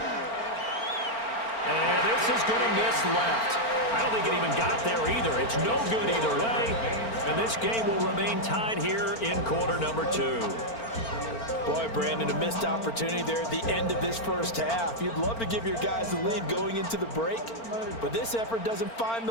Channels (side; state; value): right; late; 4.4 ms